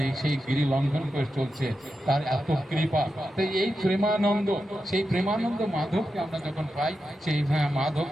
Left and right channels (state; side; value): normal; both; correlation 0.89